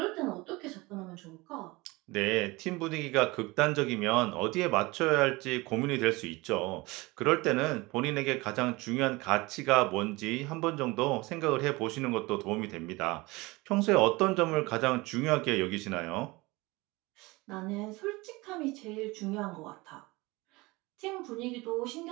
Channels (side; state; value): left; quieter; 22.8 dB